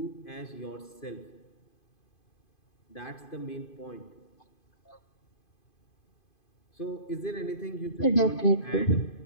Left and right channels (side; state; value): right; late; 2.5 ms